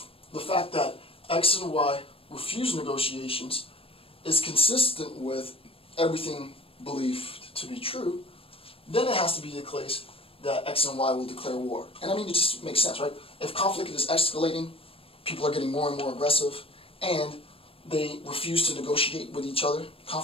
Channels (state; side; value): late; right; 0.27 ms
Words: X and Y refuse negotiations is consistent with everything believed to be true, then it has to be the case that X and Y will declare war. And I mean, it just makes sense, right? If conflict is escalating, people are getting more and more aggressive, and they refuse to negotiate with each other,